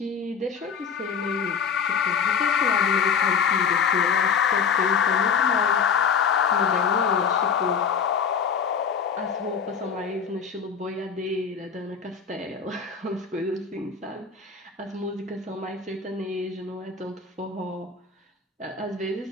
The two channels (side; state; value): right; quieter; 6.4 dB